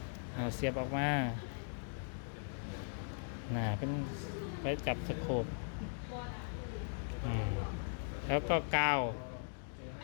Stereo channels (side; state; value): right; silent; digital silence